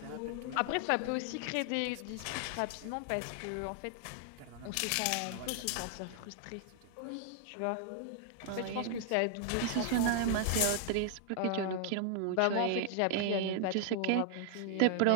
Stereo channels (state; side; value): different; both; correlation 0.00